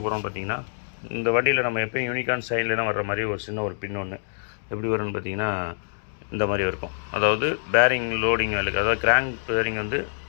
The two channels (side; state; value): right; silent; digital silence